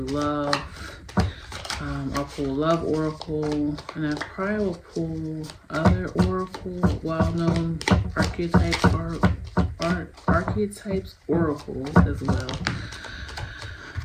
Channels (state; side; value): identical; both; correlation 1.00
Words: love. I'll pull love oracle. And I probably will pull other oracle, well-known archetypes oracle as well.